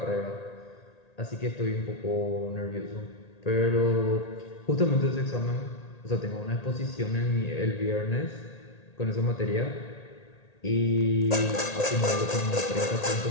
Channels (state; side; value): late; right; 1.8 ms